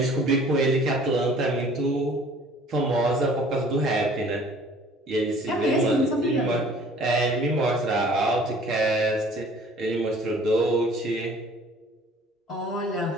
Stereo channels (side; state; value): both; normal; correlation 0.52